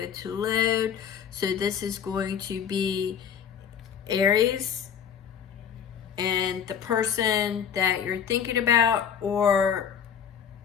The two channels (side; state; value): right; quieter; 8.1 dB